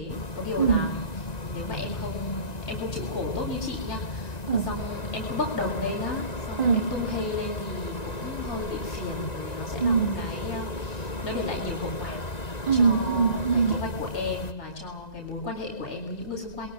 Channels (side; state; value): right; late; 1.9 ms